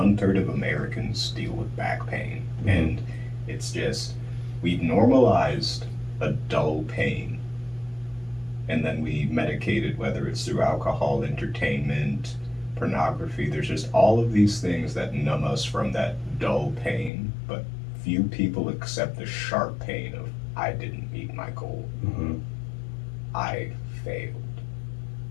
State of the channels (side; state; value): right; drops out; at 17.1 s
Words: of Americans deal with back pain. Mm-hmm. And it's just, we've normalized a dull pain. And then we medicate it, whether it's through alcohol, entertainment, pornography. There's just all of these things that numb us from that dull pain, but few people accept the sharp pain of, I didn't meet my goal. Mm-hmm. I failed.